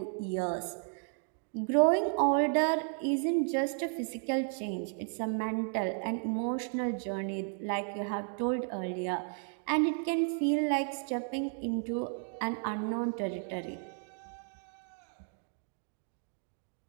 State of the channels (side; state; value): left; silent; 55 dB below the other